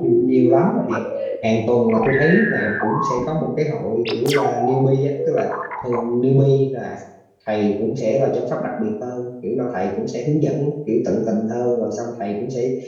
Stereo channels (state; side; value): identical; both; correlation 1.00